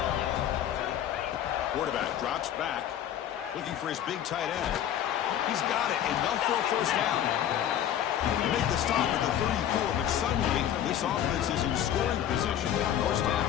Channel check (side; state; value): right; quieter; 10.6 dB